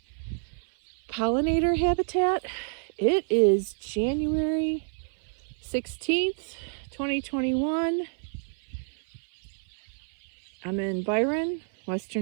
pollinator habitat. It is January 16th, 2021. I'm in Byron,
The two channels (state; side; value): silent; left; 59 dB below the other